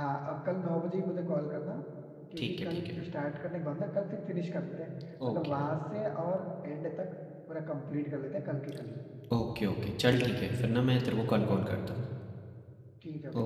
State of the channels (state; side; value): identical; both; correlation 1.00